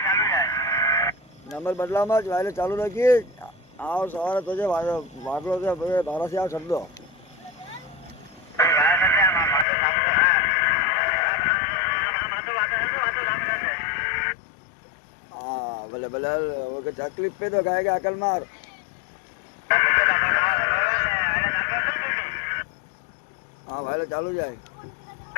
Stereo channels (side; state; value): right; drops out; at 9.7 s